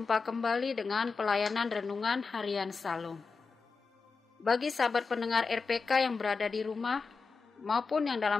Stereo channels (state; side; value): quieter; right; 4.7 dB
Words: kembali dengan pelayanan renungan harian Salum. Bagi sahabat pendengar RPK yang berada di rumah maupun yang